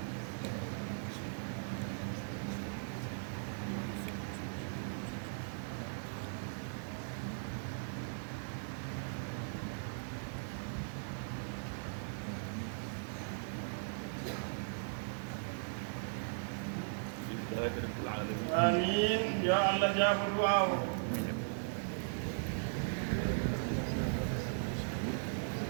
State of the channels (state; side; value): silent; left; digital silence